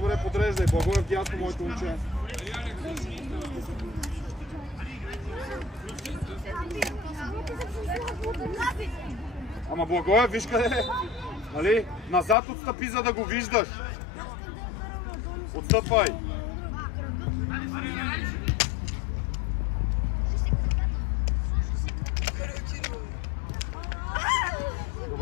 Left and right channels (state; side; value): drops out; right; at 12.4 s